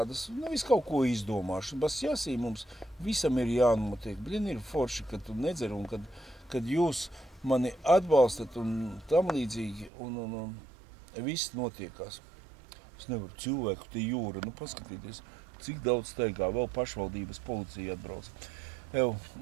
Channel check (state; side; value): drops out; left; at 9.9 s